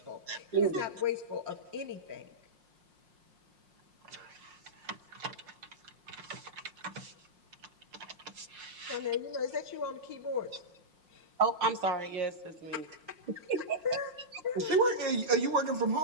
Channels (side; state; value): left; late; 5.6 ms